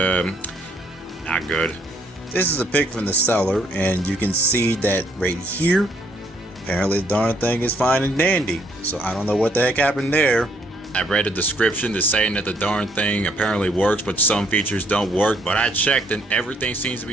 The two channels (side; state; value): both; normal; correlation 0.67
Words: good. This is a pic from the seller, and you can see that right here. Apparently the darn thing is fine and dandy. So I don't know what the heck happened there. I read a description that's saying that the darn thing apparently works, but some features don't work. But I checked and everything seems to